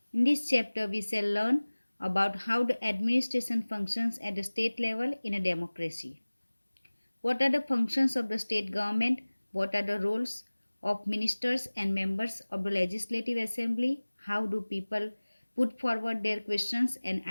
In this chapter, we shall learn about how the administration functions at the state level in a democracy. What are the functions of the state government? What are the roles of ministers and members of the Legislative Assembly? How do people put forward their questions and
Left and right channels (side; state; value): both; inverted; correlation -1.00